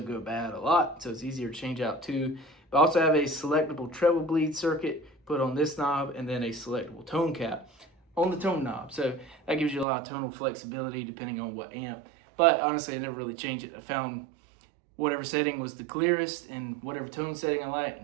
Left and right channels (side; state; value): left; drops out; at 9.9 s